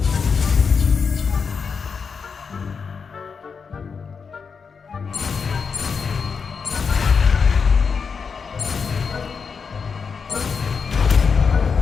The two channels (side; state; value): right; quieter; 5.7 dB